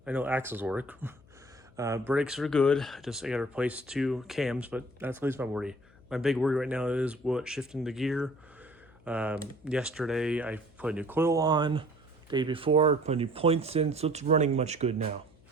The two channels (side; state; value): left; noise; hum, 27 dB below the sound